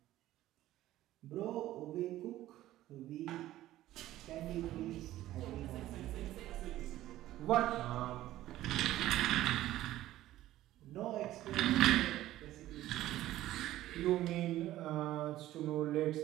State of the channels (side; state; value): left; quieter; 14.7 dB